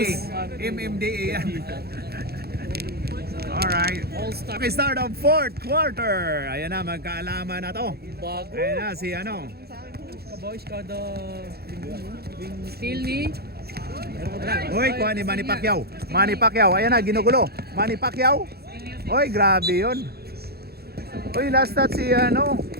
MMDA yan. Alright. All-Star. Okay, start of fourth quarter. Ayan na, magkaalaman na to. Bago. Ayan na, si ano. Boys, kada still ni Uy, kuha ni Manny Pacquiao. Manny Pacquiao, ayan na, ginugulo. Manny Pacquiao. Uy, grabe yun. Uy, last shot si ano,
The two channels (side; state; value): left; late; 0.46 ms